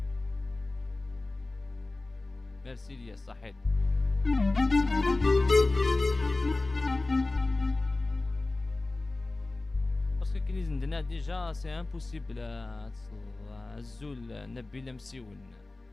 ميرسي ليا صحيت. باسكو كي نزندنا ديجا سي امبوسيبل الزول نبيل مسيون.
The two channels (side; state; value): right; quieter; 3.1 dB